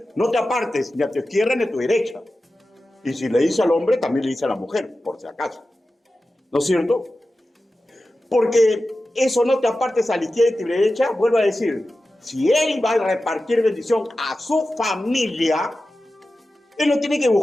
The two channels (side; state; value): both; normal; correlation 0.94